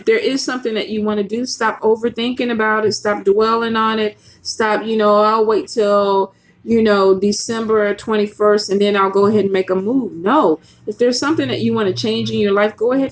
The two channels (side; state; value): both; identical; correlation 1.00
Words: there is something that you want to do, stop overthinking about it. Stop dwelling on it. Stop, I'll wait till, December 21st and then I'll go ahead and make a move. No, if there's something that you want to change in your life, go